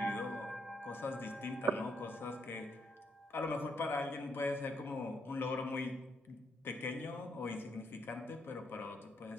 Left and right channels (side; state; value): both; normal; correlation 0.76